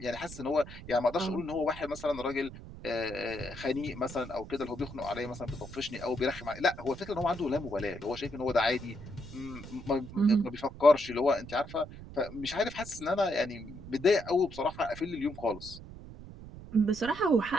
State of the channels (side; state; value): right; noise; rumble, 14 dB below the sound